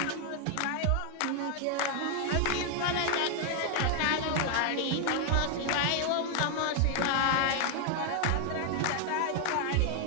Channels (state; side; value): different; both; correlation 0.00